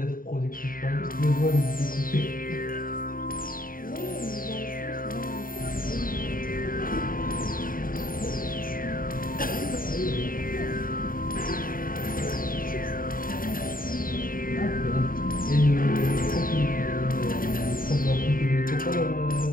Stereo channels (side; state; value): right; late; 0.41 ms